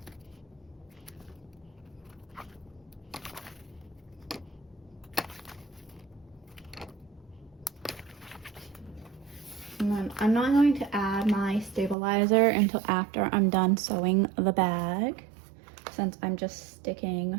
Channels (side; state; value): left; drops out; at 12.0 s